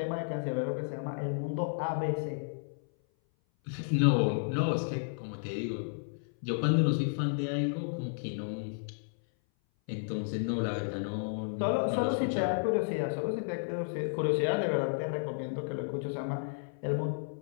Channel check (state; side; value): silent; right; 56 dB below the other